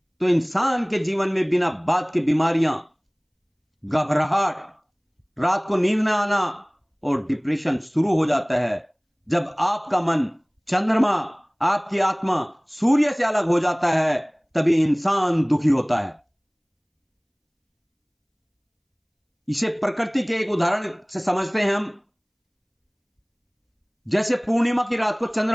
तो इंसान के जीवन में बिना बात के बीमारियां, घबराहट, रात को नींद न आना और डिप्रेशन शुरू हो जाता है। जब आपका मन चंद्रमा, आपकी आत्मा सूर्य से अलग हो जाता है तभी इंसान दुखी होता है। इसे प्रकृति के एक उदाहरण से समझते हैं हम। जैसे पूर्णिमा की रात को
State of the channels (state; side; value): identical; both; correlation 1.00